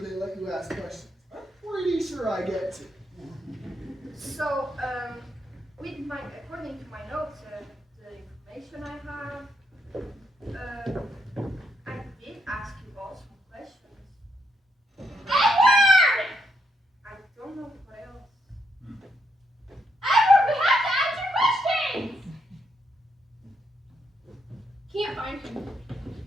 they let you ask questions. I'm pretty sure I get to. So, according to my notes, the information I have, I did ask you all some questions. Edward! I don't know what else. Edward, we have to answer questions! Can't find him.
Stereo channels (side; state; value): both; normal; correlation 0.77